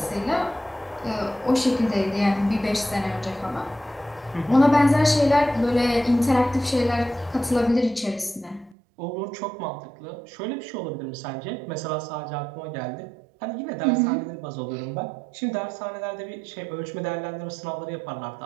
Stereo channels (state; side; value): drops out; left; at 8.8 s